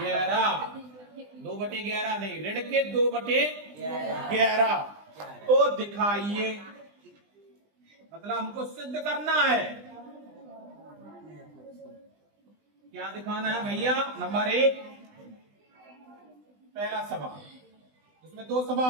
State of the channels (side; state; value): left; late; 20 ms